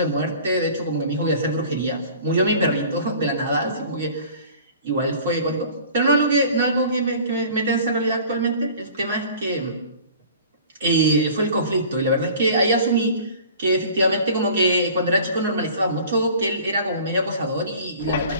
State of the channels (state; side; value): inverted; both; correlation -0.45